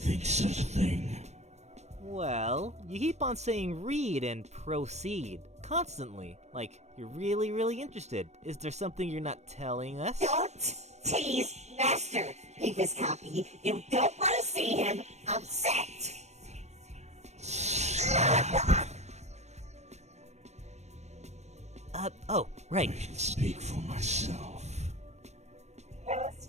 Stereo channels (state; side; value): late; left; 0.32 ms